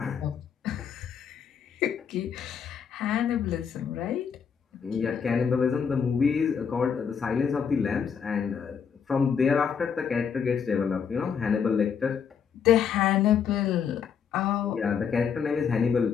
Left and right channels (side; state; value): right; quieter; 7.0 dB